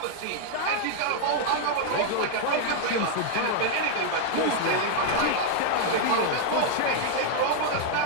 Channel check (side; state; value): both; different; correlation 0.00